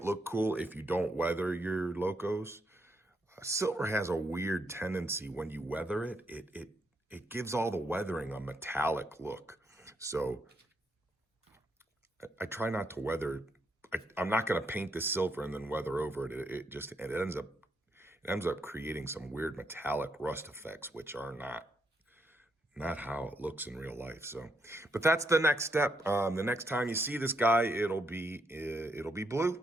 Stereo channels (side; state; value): both; normal; correlation 0.78